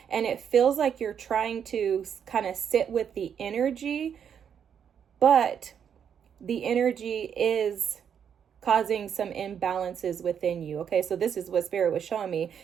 And it feels like you're trying to kind of sit with the energy, but the energy is causing some imbalances within you. Okay, so this is what Spirit was showing me,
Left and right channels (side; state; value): left; quieter; 8.0 dB